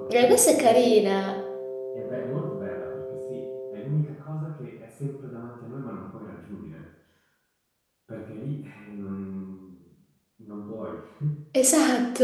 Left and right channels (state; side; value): identical; both; correlation 1.00